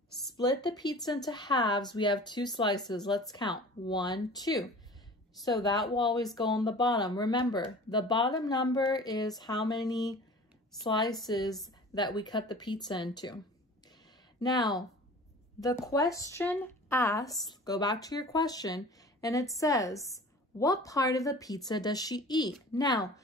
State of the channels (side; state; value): both; normal; correlation 0.42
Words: split the pizza into halves, we have two slices. Let's count. 1, 2. So that will always go on the bottom. Remember, the bottom number is how many slices that we cut the pizza into. Now, the question asks, go back to your question, and it says, what part of the pizza does she eat? Now,